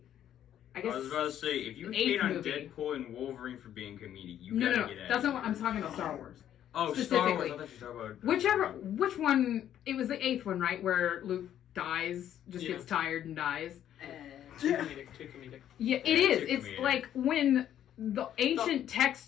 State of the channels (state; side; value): quieter; right; 10.8 dB